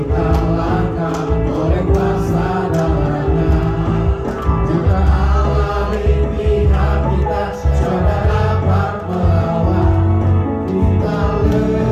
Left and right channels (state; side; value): identical; both; correlation 1.00